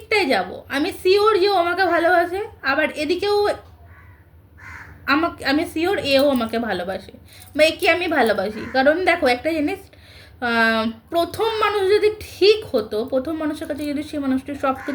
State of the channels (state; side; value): identical; both; correlation 1.00